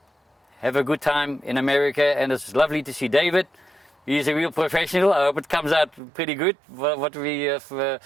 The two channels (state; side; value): drops out; left; at 6.0 s